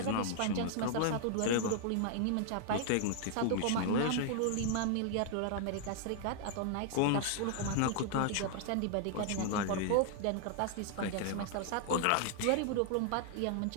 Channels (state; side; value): different; both; correlation 0.00